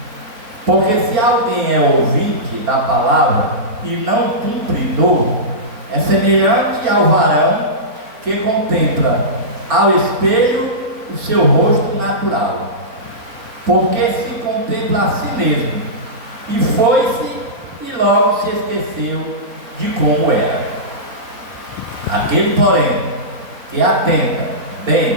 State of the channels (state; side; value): late; left; 4.0 ms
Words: Porque se alguém é ouvinte da palavra e não cumpridor, é semelhante ao varão que contempla ao espelho o seu rosto natural, porque se contempla a si mesmo, e foi-se e logo se esqueceu de como era. Aquele, porém, que atenta